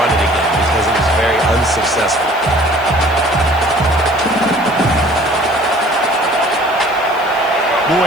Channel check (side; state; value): left; noise; hiss, 23 dB below the sound